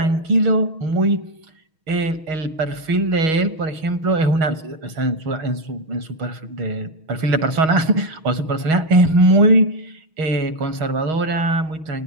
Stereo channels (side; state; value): left; late; 6.3 ms